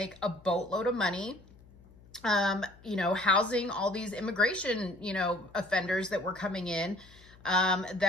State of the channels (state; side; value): noise; left; hum, 24 dB below the sound